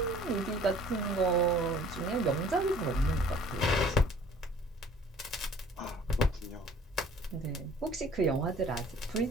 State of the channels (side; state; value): both; normal; correlation 0.52